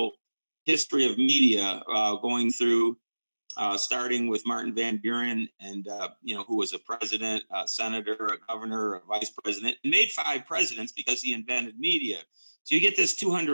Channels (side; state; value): both; inverted; correlation -1.00